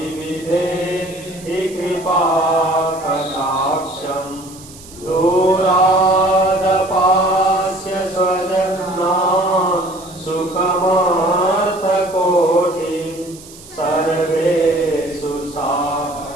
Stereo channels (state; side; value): noise; right; hiss, 19 dB below the sound